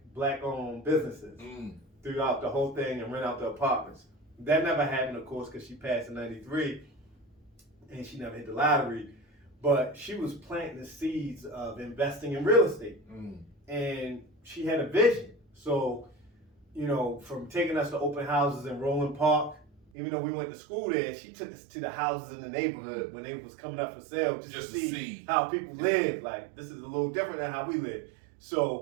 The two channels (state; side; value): drops out; left; at 19.8 s